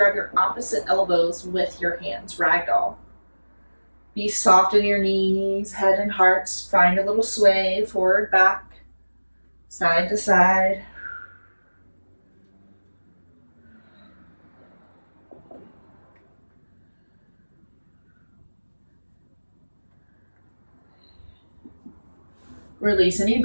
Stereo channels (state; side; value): inverted; both; correlation -1.00